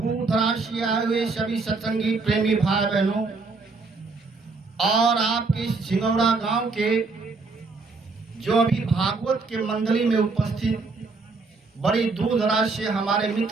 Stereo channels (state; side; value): quieter; left; 4.0 dB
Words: दराज से आए हुए सभी सत्संगी प्रेमी भाई बहनों, और आपके सिंगौड़ा गांव के जो अभी भागवत के मंडली में उपस्थित बड़ी दूर दराज से हमारे